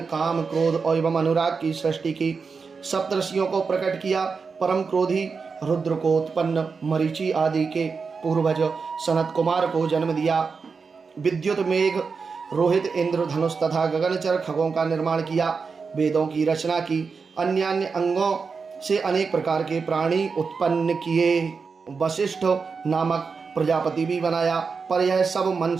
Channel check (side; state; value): left; quieter; 5.1 dB